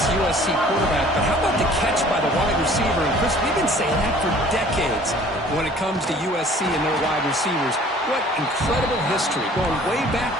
USC quarterback, but how about the catch by the wide receiver? And Chris, we've been saying that for decades when it comes to USC and their wide receivers. What incredible history, going way back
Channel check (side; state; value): both; normal; correlation 0.51